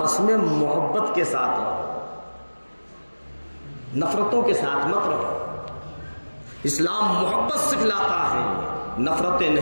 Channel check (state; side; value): inverted; both; correlation -1.00